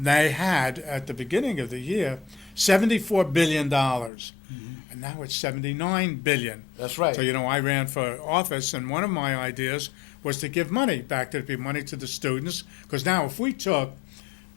They had, at the beginning of the year, $74 billion, and now it's $79 billion. That's right. So, I ran for office, and one of my ideas was to give money back to the money to the students, because now if we took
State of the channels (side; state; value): right; drops out; at 4.1 s